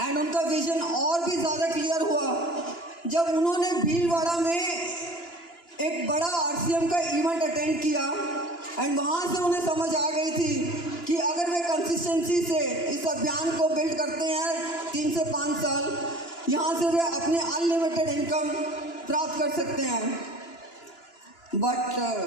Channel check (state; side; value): late; right; 2.9 ms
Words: उनका विजन और भी ज़्यादा क्लियर हुआ जब उन्होंने भीलवाड़ा में एक बड़ा आरसीएम का इवेंट अटेंड किया। एंड वहाँ से उन्हें समझ आ गई थी कि अगर वे कंसिस्टेंसी से इस अभियान को बिल्ड करते हैं 3 से 5 साल, यहाँ से वे अपनी अनलिमिटेड इनकम प्राप्त कर सकते हैं। बट